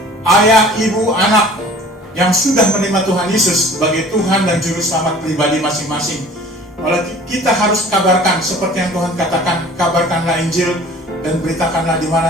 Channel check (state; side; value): normal; both; correlation 0.47